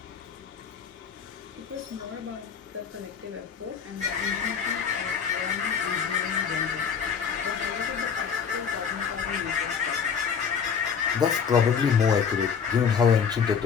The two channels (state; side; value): quieter; right; 6.8 dB